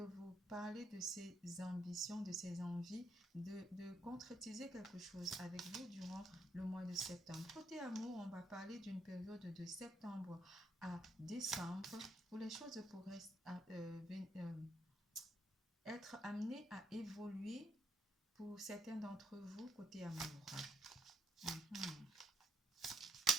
vous parler de ses ambitions, de ses envies, de concrétiser quelque chose avec vous durant le mois de septembre. Côté amour, on va parler d'une période de septembre à décembre où les choses pourraient être amenées à évoluer pour certains d'entre vous côté amour.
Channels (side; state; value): both; normal; correlation 0.73